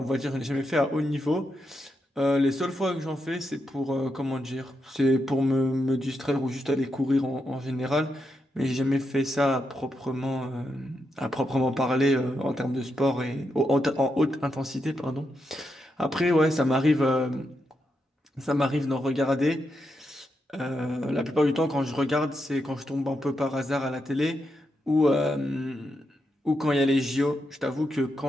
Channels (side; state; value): both; normal; correlation 0.84